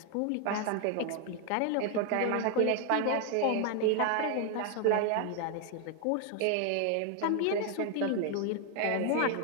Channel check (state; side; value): different; both; correlation 0.00